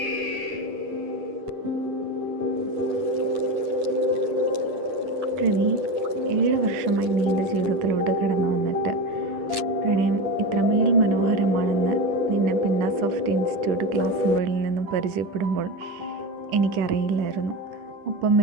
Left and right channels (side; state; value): left; late; 10 ms